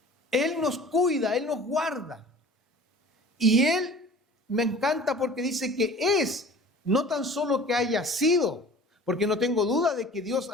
Él nos cuida, Él nos guarda. Y Él me encanta porque dice que es, no tan solo que haya sido, porque no tengo duda de que Dios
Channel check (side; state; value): both; normal; correlation 0.44